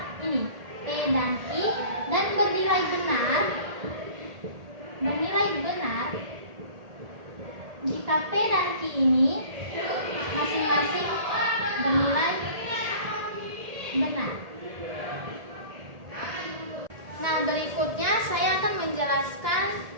ini P dan Q dan bernilai benar jika P dan Q ini masing-masing bernilai benar. Nah, berikutnya saya akan menjelaskan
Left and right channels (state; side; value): late; left; 1.8 ms